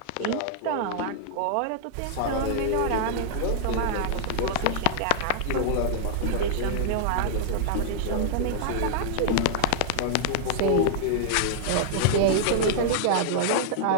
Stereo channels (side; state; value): both; different; correlation -0.01